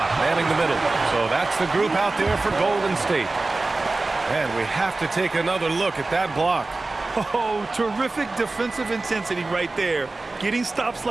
manning the middle. So that's the group out there for Golden State. And we have to take another look at that block. Oh, terrific defensive intensity right there. Getting stops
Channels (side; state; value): left; quieter; 3.3 dB